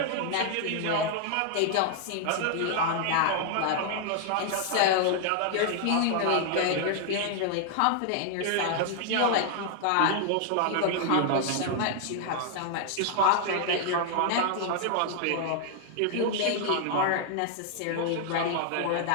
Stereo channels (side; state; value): both; different; correlation 0.00